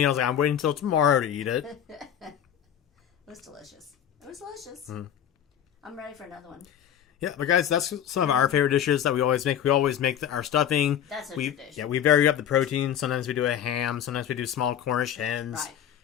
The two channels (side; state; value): right; quieter; 9.7 dB